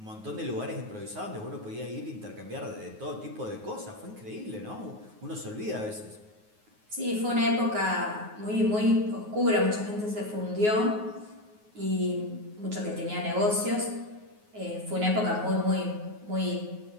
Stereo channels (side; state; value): left; late; 9.5 ms